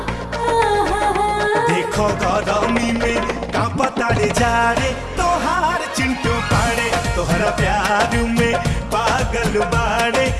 देखो गरमी में कांपतारे जा रे तोहार चिंटू पाड़े। तोहरा प्यार में पागल बाड़े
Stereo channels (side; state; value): both; identical; correlation 1.00